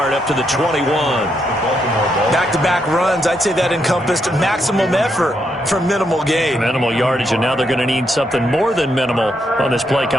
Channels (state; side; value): normal; both; correlation 0.79